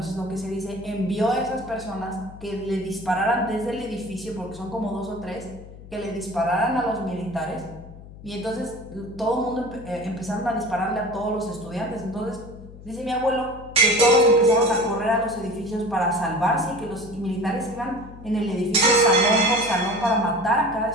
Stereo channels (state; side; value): noise; left; hum, 17 dB below the sound